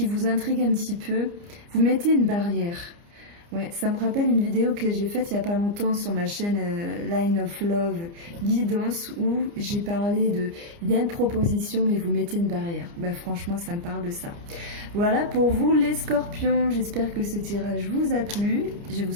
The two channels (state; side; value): late; left; 29 ms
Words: vous intrigue un petit peu. Vous mettez une barrière. Ouais, ça me rappelle une vidéo que j'ai faite il n'y a pas longtemps sur ma chaîne Line of Love Guidance où j'ai parlé de il y a une proposition mais vous mettez une barrière. Franchement, ça me parle de ça. Voilà pour vous les scorpions. J'espère que ce tirage vous a plu. Je vous